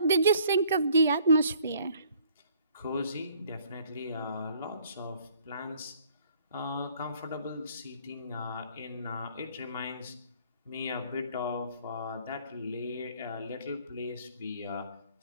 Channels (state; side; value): inverted; both; correlation -0.59